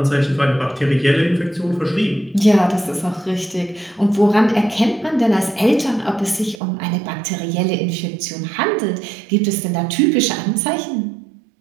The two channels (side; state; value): left; drops out; at 6.6 s